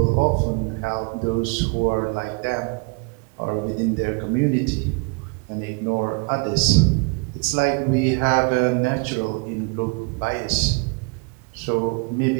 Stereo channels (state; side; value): quieter; left; 31.8 dB